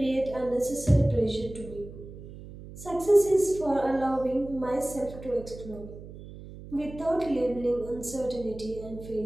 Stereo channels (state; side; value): noise; right; hum, 14 dB below the sound